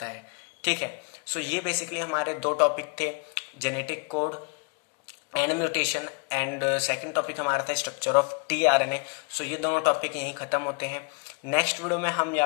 है। ठीक है, सो ये बेसिकली हमारे दो टॉपिक थे, genetic code and mutation, and second topic हमारा था स्ट्रक्चर ऑफ टीआरएनए। सो ये दोनों टॉपिक यहीं खत्म होते हैं। नेक्स्ट वीडियो में हम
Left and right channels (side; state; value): right; quieter; 39.7 dB